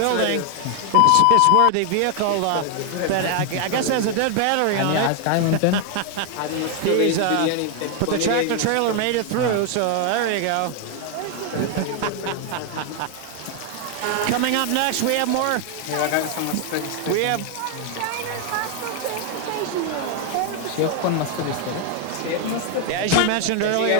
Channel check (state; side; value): different; both; correlation 0.01